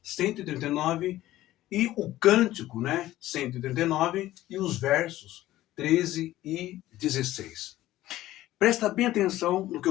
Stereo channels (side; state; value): right; quieter; 15.1 dB